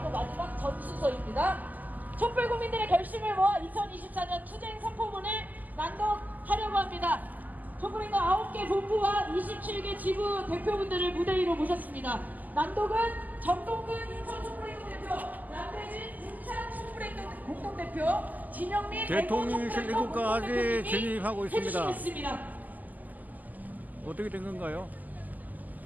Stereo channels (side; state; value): left; late; 0.081 ms